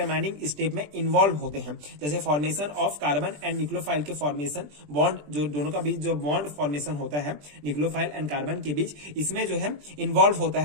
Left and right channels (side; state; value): left; late; 20 ms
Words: स्टेप में इन्वॉल्व होते हैं। जैसे formation of carbon and nucleophile के फॉर्मेशन, बॉन्ड जो दोनों का बीच जो बॉन्ड फॉर्मेशन होता है न्यूक्लियोफाइल एंड कार्बन के बीच, इसमें जो है इन्वॉल्व होता